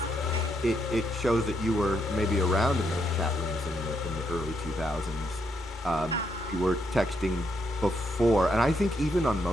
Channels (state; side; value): normal; both; correlation 0.77